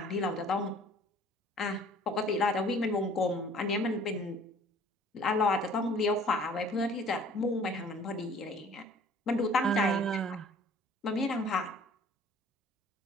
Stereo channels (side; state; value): both; normal; correlation 0.52